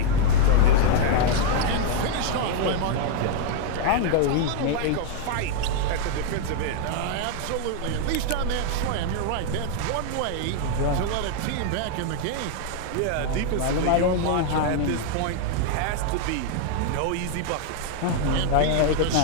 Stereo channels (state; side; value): different; both; correlation 0.00